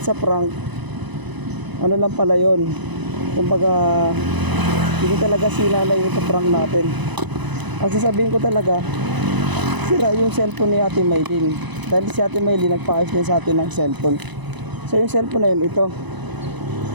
a prank, ano lang pala yun, kumbaga hindi talaga si nanay yung prank natin. Ang sasabihin ko talaga, sira yung cellphone ni ate Maylin. Dahil si ate Maylin nagpaayos din sa atin ng cellphone. So yung cellphone na yun, ito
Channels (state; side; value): late; left; 1.0 ms